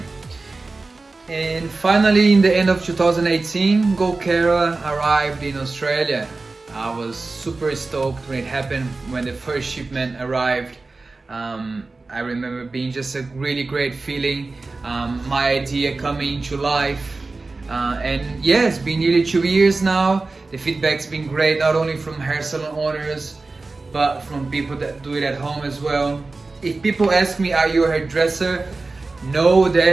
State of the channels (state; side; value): quieter; left; 3.6 dB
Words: And finally, in the end of 2018, GoldKera arrived in Australia. I was super stoked when it happened, when the first shipment arrived. I remember being just a really great feeling, my idea coming to life. And yeah, it's been nearly 2 years now. The feedback's been great, not only from hair salon owners, but from people that do it at home as well. If people ask me, are you a hairdresser? No, the